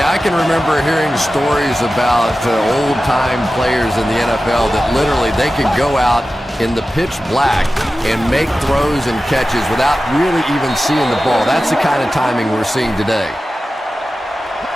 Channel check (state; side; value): normal; both; correlation 0.94